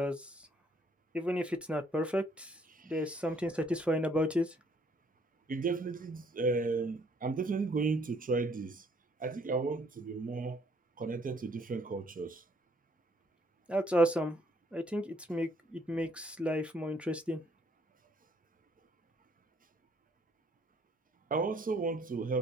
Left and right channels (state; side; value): normal; both; correlation 0.65